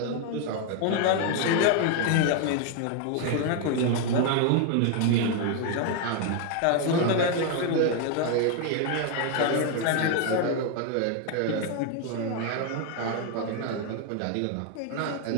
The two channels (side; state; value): both; different; correlation 0.01